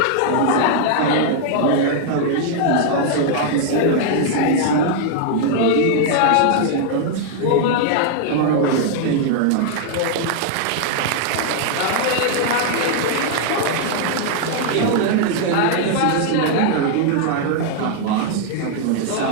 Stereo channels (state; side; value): different; both; correlation 0.00